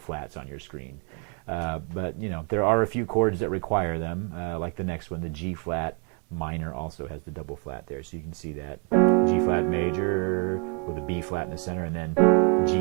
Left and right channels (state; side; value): quieter; left; 34.8 dB